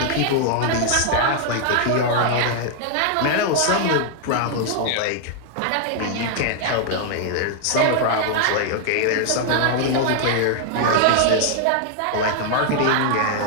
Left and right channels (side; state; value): both; different; correlation 0.00